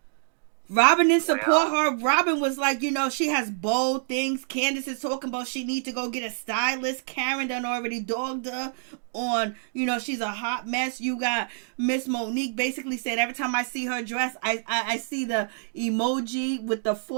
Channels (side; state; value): left; silent; digital silence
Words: Robyn didn't support her. Robyn was like, she has bold things. Candace is talking about she needs to go get a stylist. Karen done already dogged her on, she's a hot mess. You got Miss Monique basically said every time I see her dress, I see the emoji with the